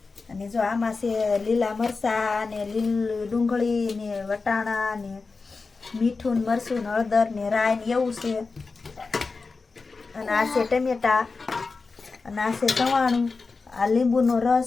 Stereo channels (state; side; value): quieter; right; 4.2 dB